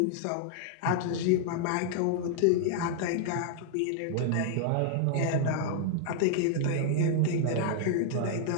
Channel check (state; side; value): different; both; correlation -0.01